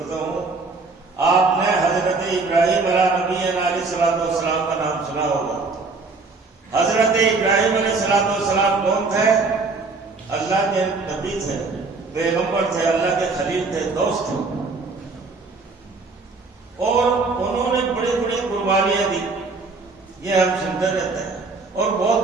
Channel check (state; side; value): quieter; left; 3.9 dB